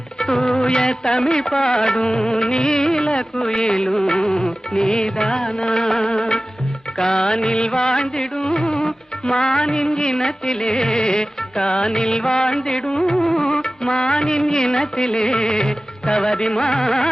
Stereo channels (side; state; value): both; normal; correlation 0.96